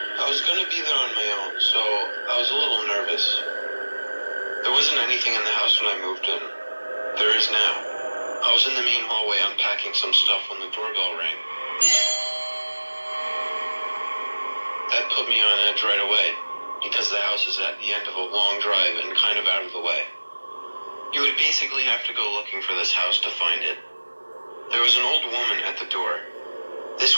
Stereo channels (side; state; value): both; inverted; correlation -1.00